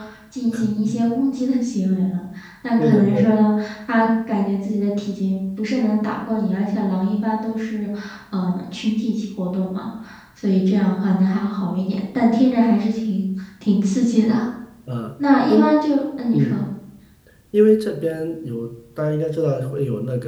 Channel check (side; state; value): both; identical; correlation 1.00